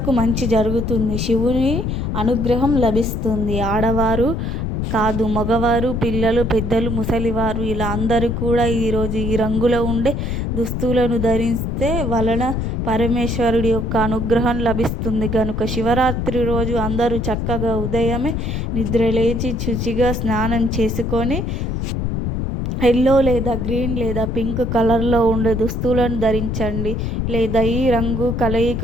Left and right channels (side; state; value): left; noise; rumble, 2 dB below the sound